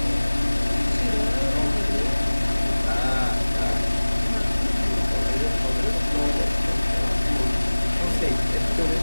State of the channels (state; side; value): inverted; both; correlation -1.00